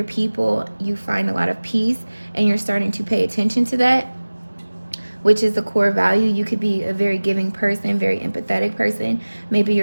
people, you find a lot of peace and you're starting to pay attention to that, which is a core value. You could be a very giving person, very empathetic person. Maybe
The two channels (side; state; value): both; inverted; correlation -1.00